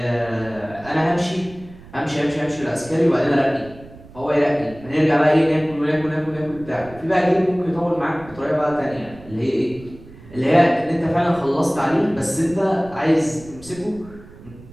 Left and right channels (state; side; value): noise; right; rumble, 19 dB below the sound